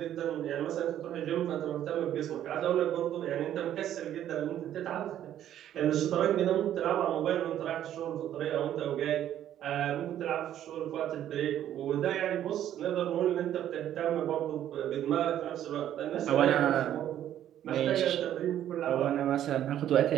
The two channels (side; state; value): left; quieter; 11.3 dB